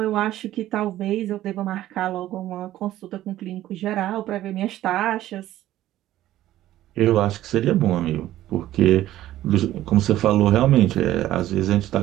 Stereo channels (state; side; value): quieter; left; 14.0 dB